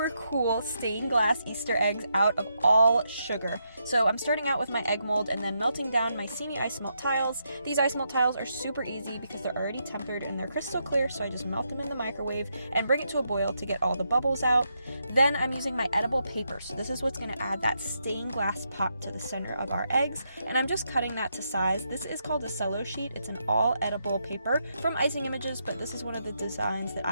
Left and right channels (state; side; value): inverted; both; correlation -0.81